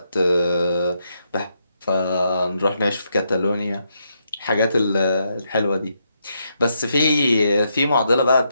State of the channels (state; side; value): inverted; both; correlation -0.79